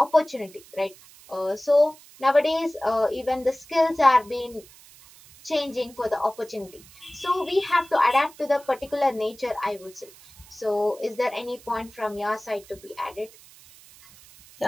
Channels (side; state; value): right; noise; hiss, 23 dB below the sound